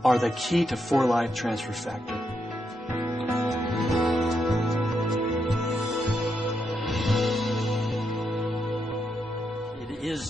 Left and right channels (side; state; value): both; normal; correlation 0.81